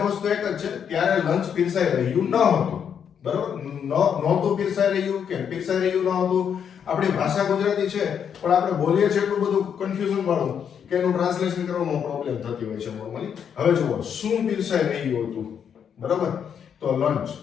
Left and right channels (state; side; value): quieter; right; 7.9 dB